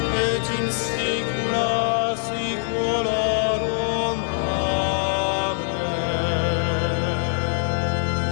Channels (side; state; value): right; silent; 63 dB below the other